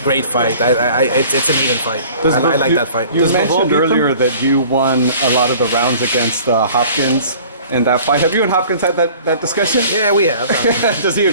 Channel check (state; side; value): inverted; both; correlation -0.48